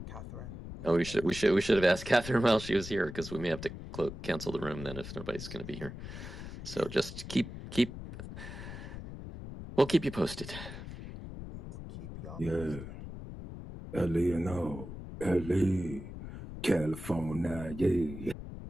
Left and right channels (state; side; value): noise; left; rumble, 10 dB below the sound